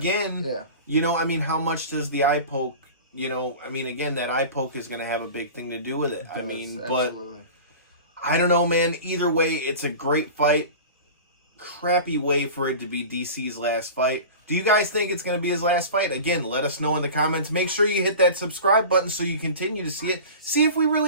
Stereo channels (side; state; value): both; inverted; correlation -0.35